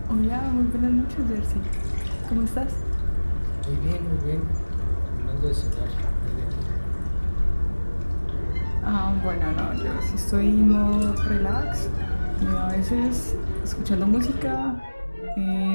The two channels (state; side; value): inverted; both; correlation -1.00